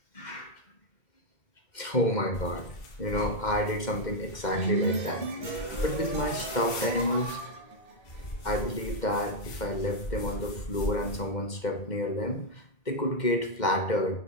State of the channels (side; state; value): right; late; 2.1 ms